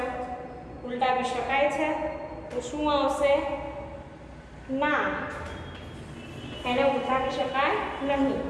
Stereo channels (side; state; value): both; identical; correlation 1.00